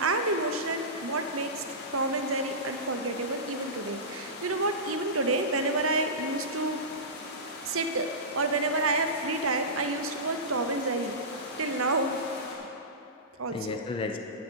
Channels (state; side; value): normal; both; correlation -0.17